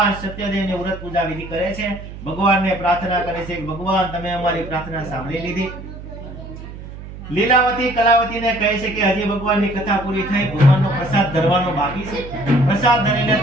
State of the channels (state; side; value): noise; right; hum, 13 dB below the sound